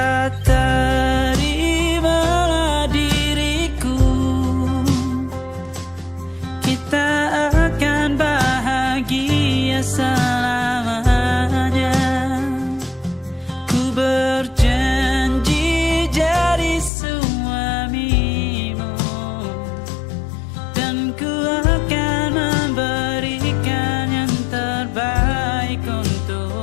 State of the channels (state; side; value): drops out; right; at 16.9 s